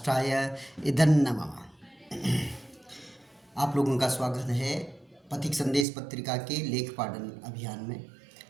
इदं नमः। आप लोगों का स्वागत है पथिक संदेश पत्रिका के लेख पाठन अभियान में।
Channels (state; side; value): drops out; left; at 5.9 s